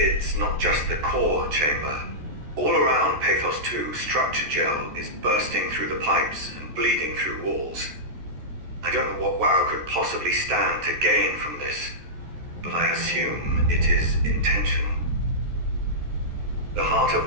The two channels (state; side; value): late; left; 14 ms